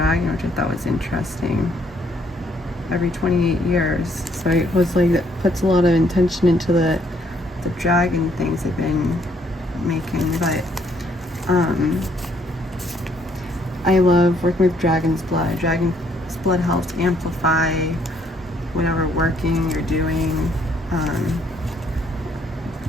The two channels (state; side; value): normal; both; correlation 0.68